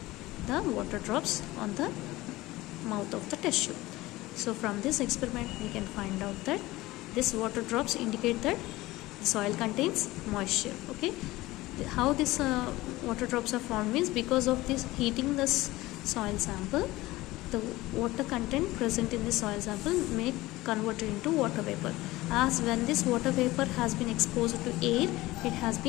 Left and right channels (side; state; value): right; quieter; 18.7 dB